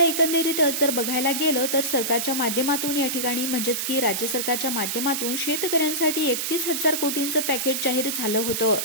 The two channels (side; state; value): right; noise; hiss, 1 dB below the sound